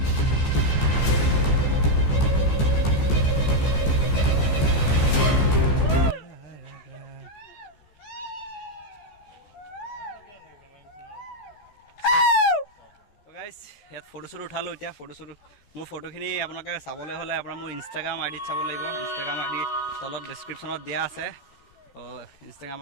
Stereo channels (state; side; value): late; right; 14 ms